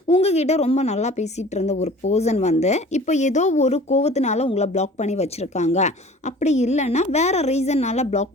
உங்ககிட்ட ரொம்ப நல்லா பேசிகிட்டு இருந்த ஒரு பர்சன் இப்போ ஏதோ ஒரு கோவத்தினால உங்களை பிளாக் பண்ணி வச்சுருக்காங்க. அப்படி இல்லைன்னா வேறு ரீசன்னால் பிளாக்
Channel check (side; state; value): both; normal; correlation 0.45